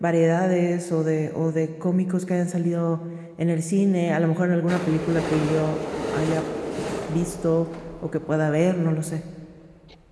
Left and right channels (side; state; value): both; identical; correlation 1.00